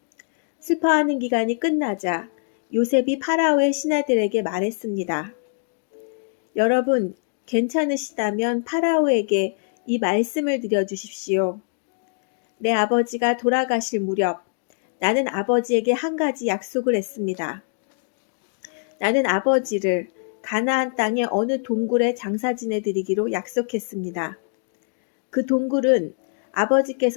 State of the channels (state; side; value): silent; right; digital silence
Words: 슬퍼하는 기간이 끝나자 요셉이 파라오의 신하들에게 말했습니다. 여러분, 괜찮으시다면 파라오에게 이 말씀을 드려주십시오. 내 아버지가 돌아가실 무렵 나는 아버지에게 한 가지 약속을 했습니다. 나는 아버지를 가나안 땅의 어느 동굴에 장사 지내드리기로 약속했습니다. 그 동굴은